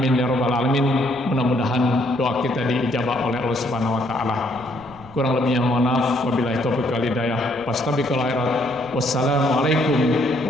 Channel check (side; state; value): right; noise; rumble, 24 dB below the sound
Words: ya rabbal alamin. Mudah-mudahan doa kita diijabah oleh Allah Subhanahu wa taala. Kurang lebihnya mohon maaf. Wabillahi taufiq wal hidayah. Fastabiqul khairat. Wassalamualaikum